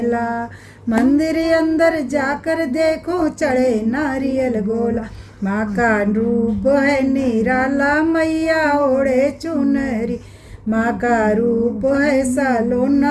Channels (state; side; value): identical; both; correlation 1.00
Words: मंदिर अंदर जाकर देखूं चढ़े नारियल गोला। माँ का रूप है निराला मैया ओढ़े चुनरी, माँ का रूप है